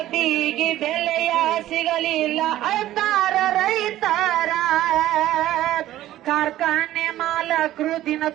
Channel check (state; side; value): quieter; left; 14.1 dB